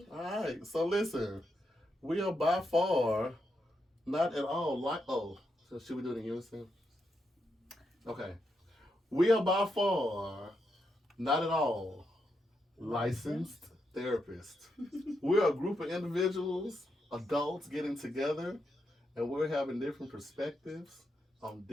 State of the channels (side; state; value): both; normal; correlation 0.82